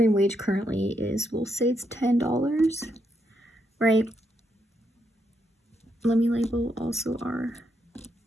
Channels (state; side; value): normal; both; correlation 0.79